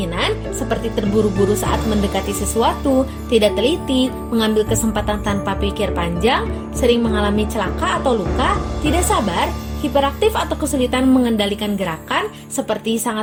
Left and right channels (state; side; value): identical; both; correlation 1.00